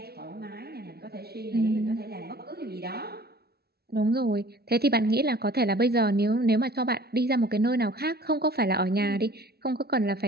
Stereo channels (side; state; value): left; late; 0.46 ms